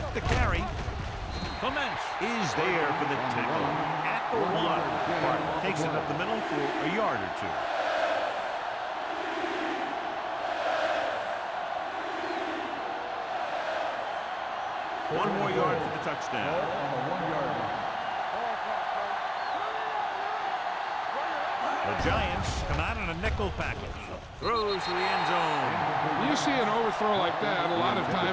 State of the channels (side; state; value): both; identical; correlation 1.00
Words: the carry, Clements is there for the tackle at the 1. Park takes it up the middle for a yard or 2. One more yard for the touchdown. On the 1-yard line. The Giants come out in a nickel package. Throws to the end zone. When you see an overthrow like that, a lot of